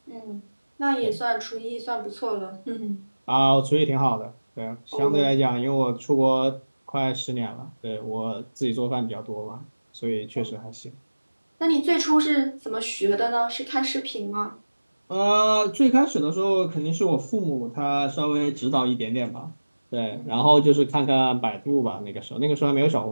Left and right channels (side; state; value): both; inverted; correlation -1.00